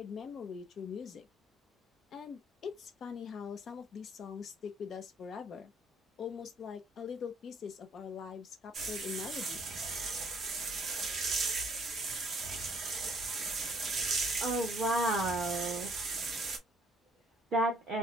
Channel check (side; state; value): both; normal; correlation 0.63